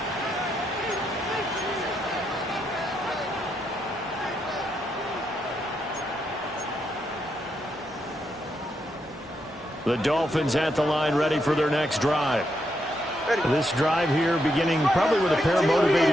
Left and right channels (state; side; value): normal; both; correlation 0.80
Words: The Dolphins at the line, ready for their next drive. This drive here beginning probably with a pair of